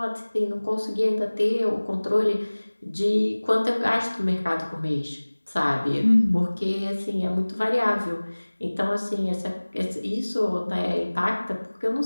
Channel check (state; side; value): inverted; both; correlation -1.00